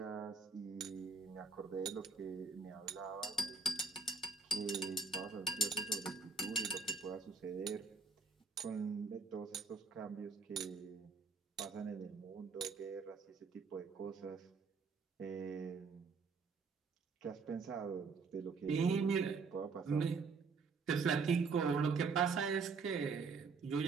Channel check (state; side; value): quieter; left; 4.7 dB